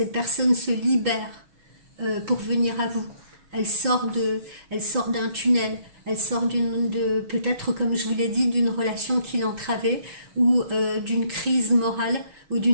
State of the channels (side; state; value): left; late; 6.3 ms